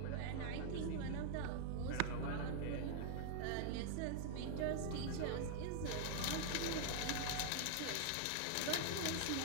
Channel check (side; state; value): both; different; correlation -0.01